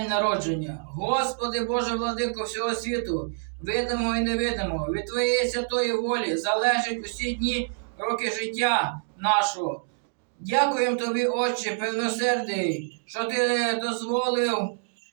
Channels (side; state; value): left; silent; digital silence